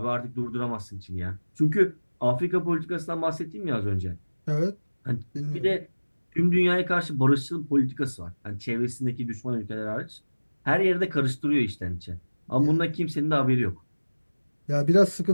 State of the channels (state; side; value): inverted; both; correlation -1.00